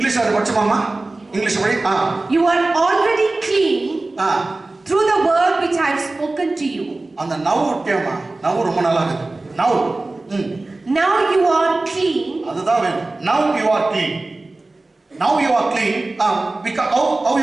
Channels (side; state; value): left; quieter; 3.1 dB